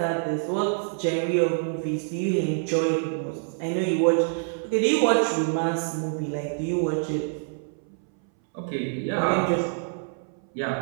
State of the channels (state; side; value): silent; left; 61 dB below the other